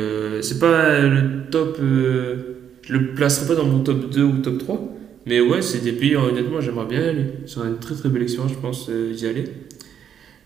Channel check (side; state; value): left; quieter; 8.8 dB